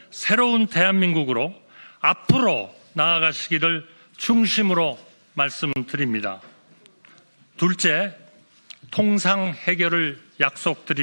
새로운 대한민국으로 앞으로 나아가시기를 중심으로 말씀드립니다. 둘째, 통상 해결을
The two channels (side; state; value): both; inverted; correlation -1.00